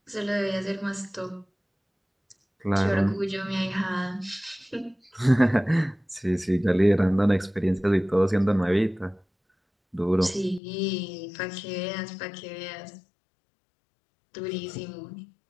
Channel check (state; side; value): drops out; right; at 10.6 s